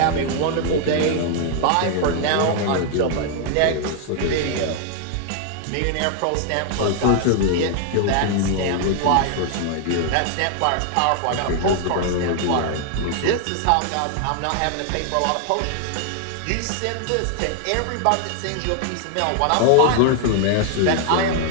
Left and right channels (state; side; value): different; both; correlation 0.00